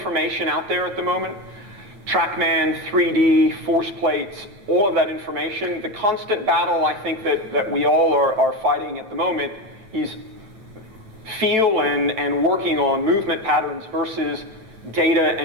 out there at the moment. TrackMan, 3D, force plates, all of that information. The constant battle I think that we all are fighting at the moment is feel and working on movement patterns versus data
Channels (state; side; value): late; left; 9.0 ms